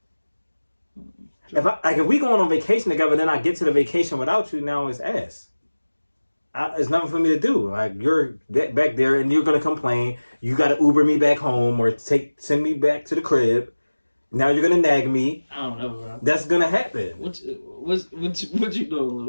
If we going on vacation together, then I get to the vacation without you. Now it's ass. it's nothing for me to do. Like, you're back there and you're gonna complain. You gotta Uber me back home or send me back to the crib. Now you're gonna nag me. I don't know, bro. That's gonna happen. What you doing,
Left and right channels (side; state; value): both; inverted; correlation -1.00